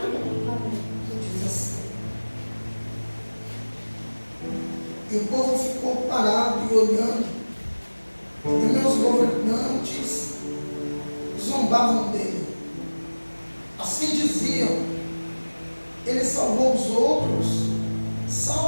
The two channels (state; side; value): inverted; both; correlation -1.00